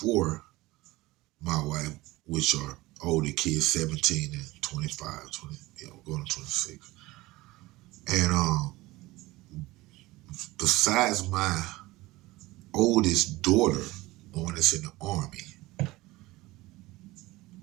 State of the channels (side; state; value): left; quieter; 19.7 dB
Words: my wife, which are older kids, 17 and 25, 20, going to 26. And besides my oldest daughter, the one that's in the army,